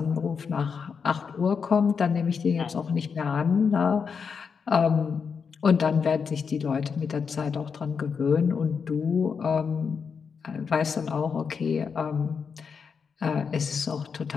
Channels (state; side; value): quieter; right; 6.0 dB